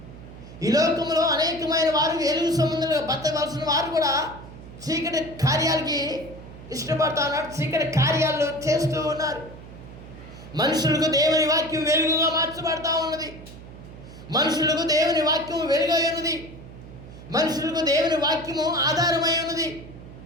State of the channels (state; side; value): noise; right; hum, 16 dB below the sound